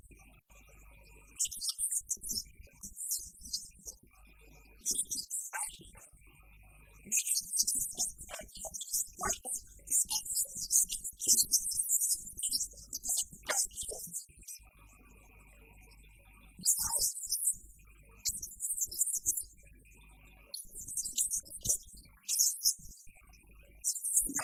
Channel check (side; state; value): both; identical; correlation 1.00